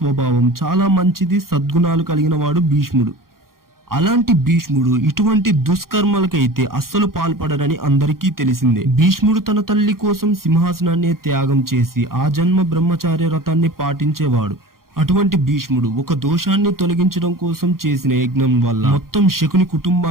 చాలా మంచిది, సద్గుణాలు కలిగిన వాడు భీష్ముడు. అలాంటి భీష్ముడు ఇటువంటి దుష్కర్మలకైతే అస్సలు పాల్పడరని అందరికీ తెలిసిందే. భీష్ముడు తన తల్లి కోసం సింహాసనాన్ని త్యాగం చేసి ఆ జన్మ బ్రహ్మచార్య వ్రతాన్ని పాటించేవాడు. అటువంటి భీష్ముడు ఒక దోషాన్ని తొలగించడం కోసం చేసిన యజ్ఞం వల్ల మొత్తం శకుని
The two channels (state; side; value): late; left; 0.92 ms